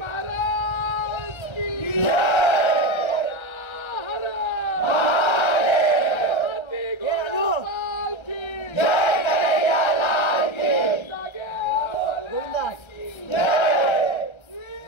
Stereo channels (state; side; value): late; right; 1.3 ms